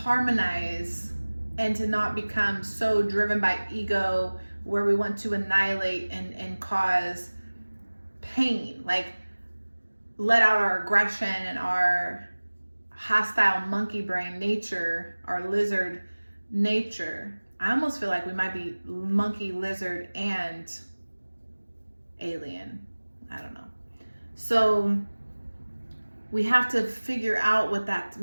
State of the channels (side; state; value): both; inverted; correlation -1.00